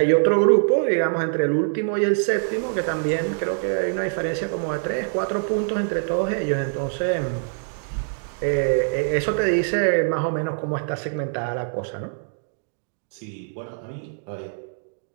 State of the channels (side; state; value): left; silent; digital silence